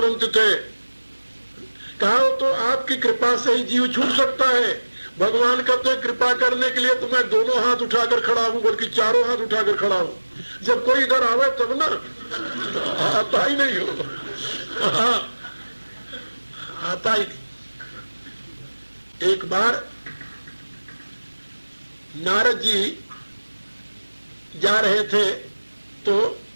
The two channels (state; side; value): inverted; both; correlation -1.00